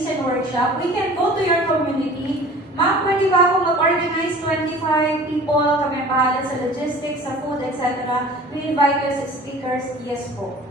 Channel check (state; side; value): normal; both; correlation 0.44